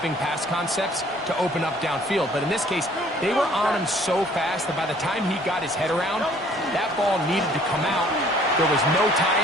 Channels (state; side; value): normal; both; correlation 0.57